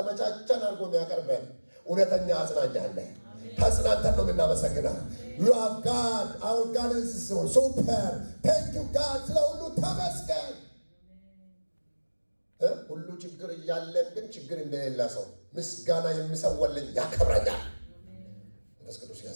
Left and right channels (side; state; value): both; inverted; correlation -1.00